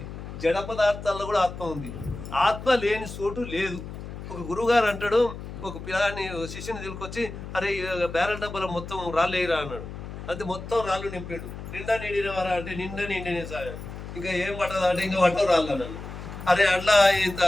జడ పదార్థాల్లో కూడా ఆత్మ ఉంది. ఆత్మ లేని చోటు లేదు. ఒక గురువుగారు అంటాడు, ఒక పిల్లాన్ని శిష్యుని తీసుకొచ్చి, అరే బ్యారెల్ డబ్బాలో మొత్తం రాళ్ళేయరా అన్నాడు. అంతే మొత్తం రాళ్ళు నింపాడు. నిండా నిండినవారా అంటే నిండా నిండిన సార్. ఇంకా ఏం పట్టదా అంటే ఇంకా పట్టవు రాళ్ళు అన్నాను. అరే అట్లా ఇంత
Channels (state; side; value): noise; left; hum, 10 dB below the sound